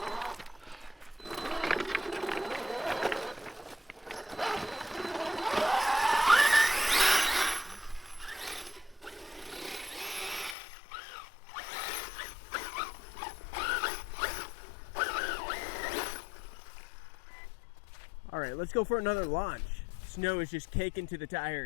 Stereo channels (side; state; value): right; drops out; at 10.6 s